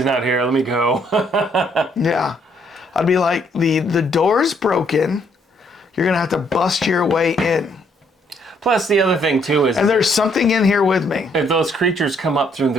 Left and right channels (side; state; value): both; normal; correlation 0.69